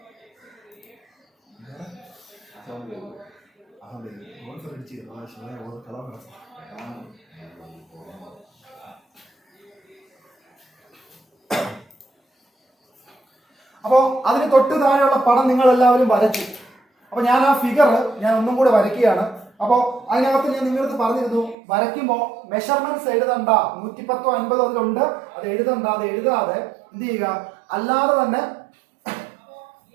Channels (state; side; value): drops out; left; at 21.6 s